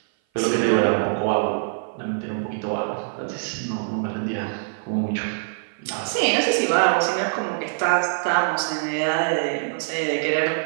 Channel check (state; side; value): silent; left; 56 dB below the other